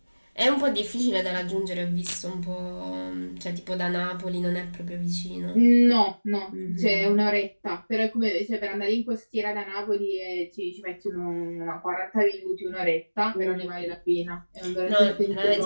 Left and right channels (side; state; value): both; inverted; correlation -1.00